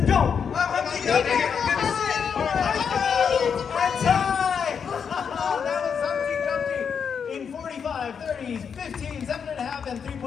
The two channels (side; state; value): right; quieter; 6.8 dB